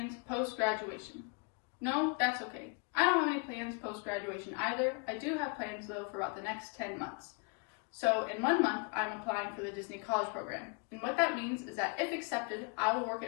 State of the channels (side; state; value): right; quieter; 35.5 dB